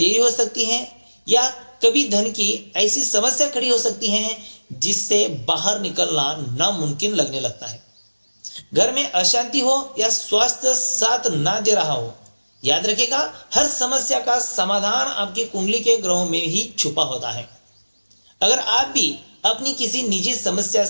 हो सकती है, या कभी धन की ऐसी समस्या खड़ी हो सकती है जिससे बाहर निकलना नामुमकिन लगने लगता है। घर में अशांति हो या स्वास्थ्य साथ ना दे रहा हो, याद रखिएगा हर समस्या का समाधान आपकी कुंडली के ग्रहों में ही छुपा होता है। अगर आप भी अपनी किसी निजी समस्या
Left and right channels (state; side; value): inverted; both; correlation -1.00